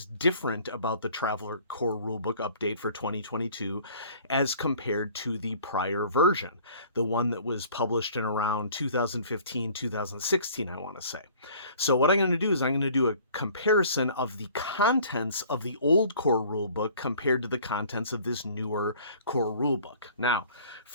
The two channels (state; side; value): inverted; both; correlation -0.51